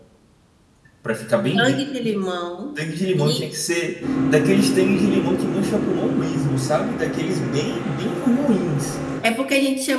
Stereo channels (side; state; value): both; identical; correlation 1.00